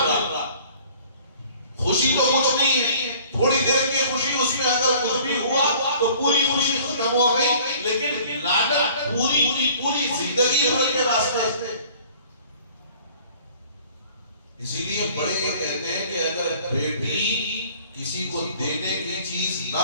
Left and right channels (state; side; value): inverted; both; correlation -0.51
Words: خوشی تو کچھ نہیں ہے, تھوڑی دیر کی خوشی, اس میں اگر کچھ بھی ہوا تو پوری خوشی ختم ہو گئی, لیکن لعنت پوری زندگی بھر کے واسطے. اسی لیے بڑے یہ کہتے ہیں کہ اگر بیٹی کسی کو دینے کی چیز نہ